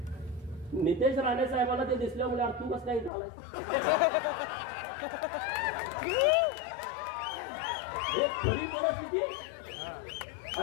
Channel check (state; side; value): drops out; right; at 3.1 s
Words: नितेश राणे साहेबांना ते दिसल्यामुळे अरे तू कसं काय झालाय, हे खरी परिस्थिती.